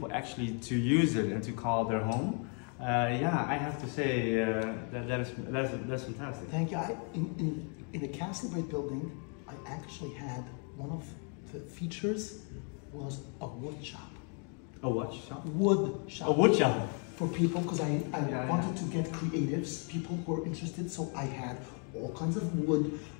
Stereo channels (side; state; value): right; quieter; 39.4 dB